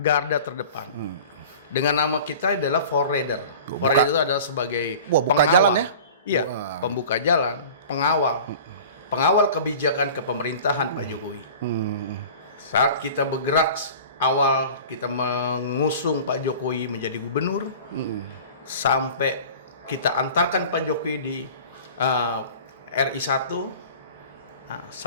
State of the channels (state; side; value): inverted; both; correlation -0.41